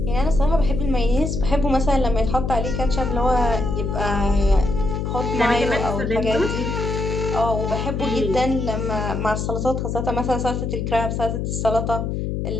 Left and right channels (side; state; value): left; noise; hum, 2 dB below the sound